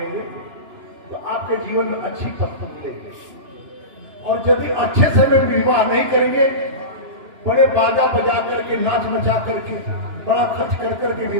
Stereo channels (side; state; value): left; late; 2.9 ms